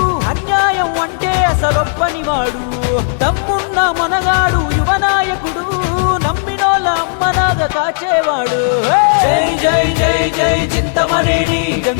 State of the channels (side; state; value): right; silent; digital silence